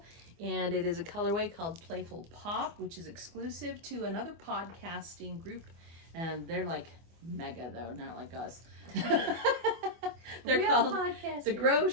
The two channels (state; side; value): late; left; 24 ms